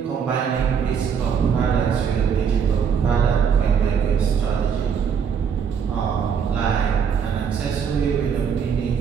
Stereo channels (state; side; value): quieter; left; 7.1 dB